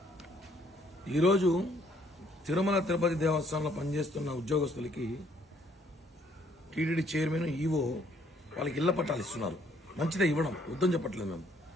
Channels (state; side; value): normal; both; correlation 0.65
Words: ఈరోజు తిరుమల తిరుపతి దేవస్థానంలో పనిచేస్తున్న ఉద్యోగస్తులకి టీటీడీ చైర్మన్ ఈవో వాళ్ళకి ఇళ్ల పట్టాలు ఇస్తున్నారు. మంచిదే, ఇవ్వడం వద్దని చెప్పట్లేదు మేము.